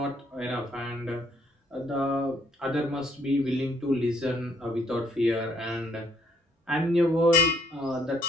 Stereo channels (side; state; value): both; normal; correlation 0.67